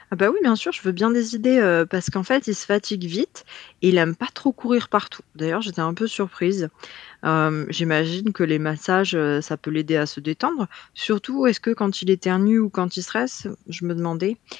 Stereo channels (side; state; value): right; quieter; 13.3 dB